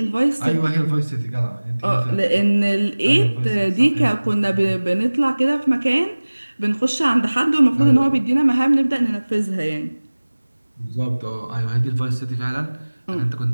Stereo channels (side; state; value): both; inverted; correlation -1.00